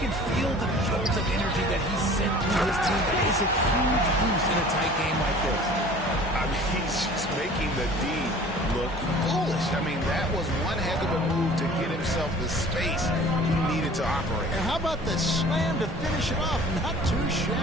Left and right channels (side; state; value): both; normal; correlation 0.46